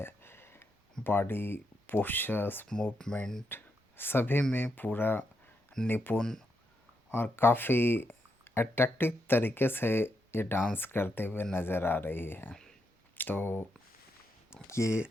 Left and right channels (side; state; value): both; normal; correlation 0.81